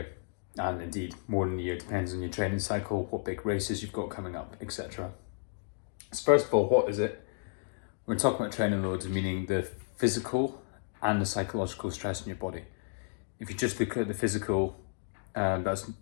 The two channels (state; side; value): silent; right; digital silence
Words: and indeed more than a year, depends on your training cycle, what big races you've got coming up, etc. So first of all, what is it? We're talking about training loads, meaning the physical and the psychological stress in your body. If you just look at the physical, that's